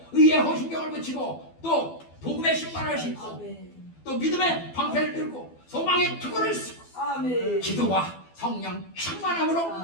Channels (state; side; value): late; right; 12 ms